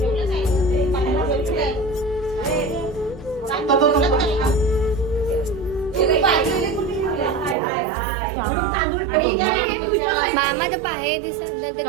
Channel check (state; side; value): drops out; left; at 7.6 s